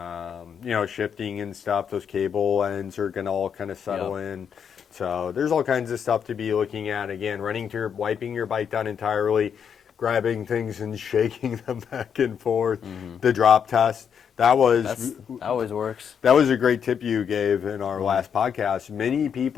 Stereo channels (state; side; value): quieter; right; 7.5 dB